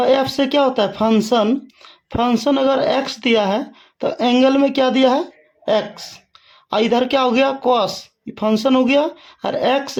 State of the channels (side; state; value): both; identical; correlation 1.00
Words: से क्या होता है, फंक्शन। फंक्शन अगर एक्स दिया है तो एंगल में क्या दिया है, एक्स। इधर क्या हो गया, कॉस, फंक्शन हो गया, और एक्स